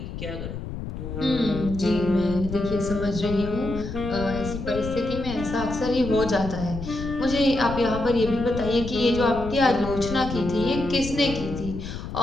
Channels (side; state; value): left; noise; rumble, 8 dB below the sound